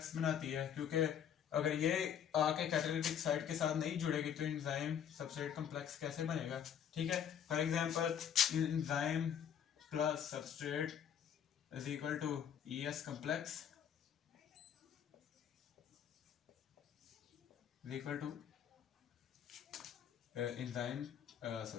बनाती है, क्योंकि अगर ये आके कैटालिटिक साइट के साथ नहीं जुड़ेगी तो एंजाइम सबस्ट्रेट कॉम्प्लेक्स कैसे बनेगा। ठीक है, for example enzyme plus substrate is equal to ES complex is equal to enzyme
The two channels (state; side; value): quieter; right; 8.8 dB